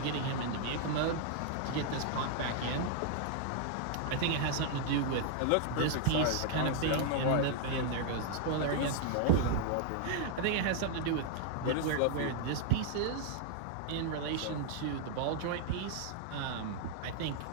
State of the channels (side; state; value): both; different; correlation -0.01